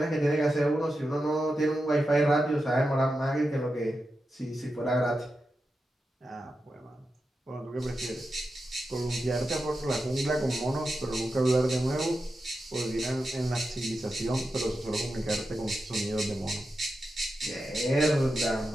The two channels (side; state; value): both; normal; correlation 0.89